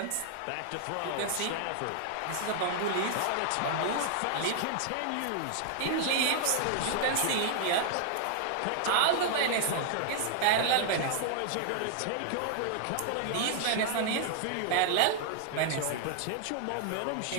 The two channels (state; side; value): different; both; correlation 0.00